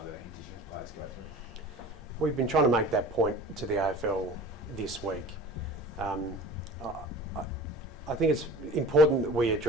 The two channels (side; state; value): both; normal; correlation 0.40